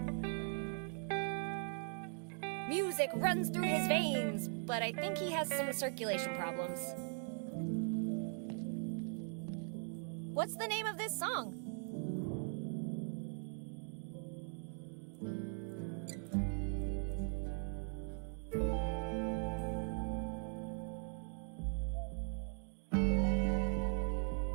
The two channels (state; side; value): silent; left; 51 dB below the other